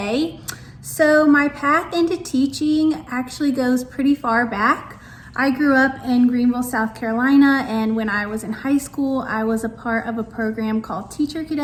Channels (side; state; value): both; identical; correlation 1.00